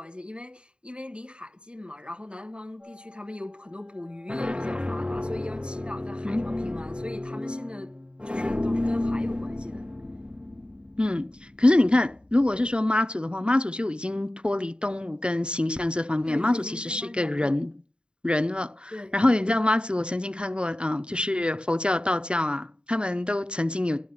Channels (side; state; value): left; late; 0.051 ms